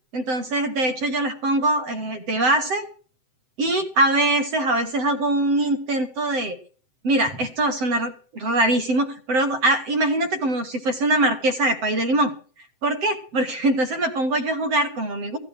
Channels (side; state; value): left; late; 7.8 ms